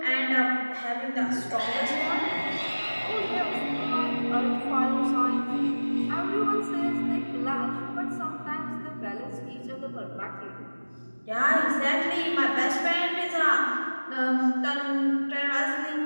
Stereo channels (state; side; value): inverted; both; correlation -1.00